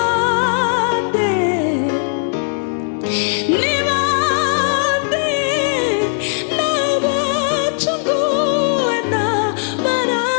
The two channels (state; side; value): silent; right; digital silence